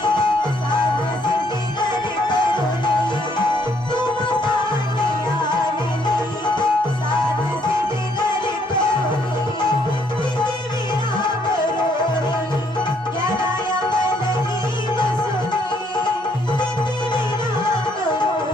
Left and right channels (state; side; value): normal; both; correlation 0.68